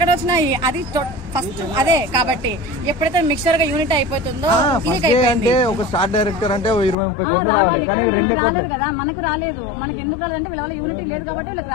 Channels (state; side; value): drops out; right; at 7.0 s